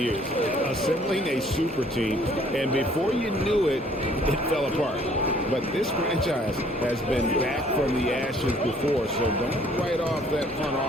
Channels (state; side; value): normal; both; correlation 0.59